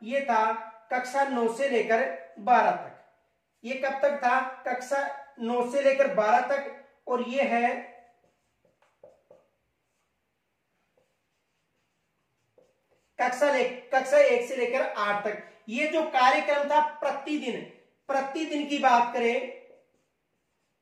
ये था कक्षा 9 से लेकर 12 तक। ये कब तक था, कक्षा 9 से लेकर 12 तक, और ये है कक्षा 1 से लेकर 8 तक। ये जो कार्यक्रम था प्रतिदिन की बात करें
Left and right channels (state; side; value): identical; both; correlation 1.00